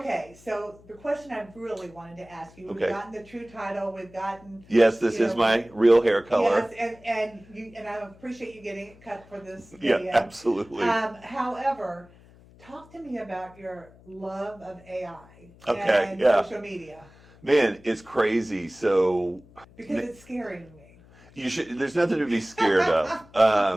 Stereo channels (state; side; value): noise; left; hum, 25 dB below the sound